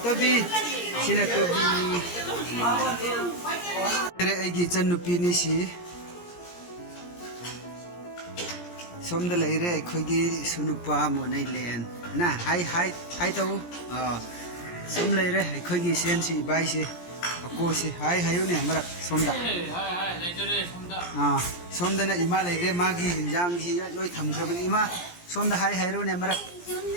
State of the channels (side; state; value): right; late; 17 ms